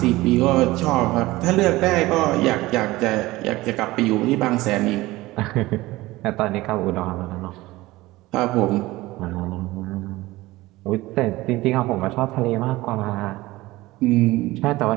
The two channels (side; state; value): left; quieter; 19.0 dB